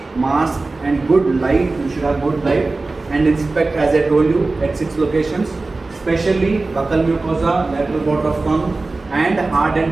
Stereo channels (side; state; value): left; quieter; 3.4 dB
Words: mask, and good light. You should have good light, and inspect, as I told you, at 6 locations, especially buccal mucosa, lateral border of tongue, and hard